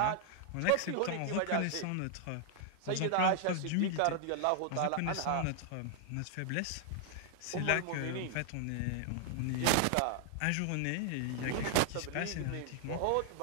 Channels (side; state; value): both; different; correlation 0.00